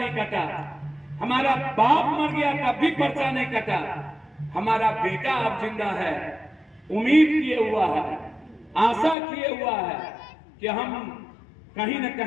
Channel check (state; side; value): drops out; right; at 9.2 s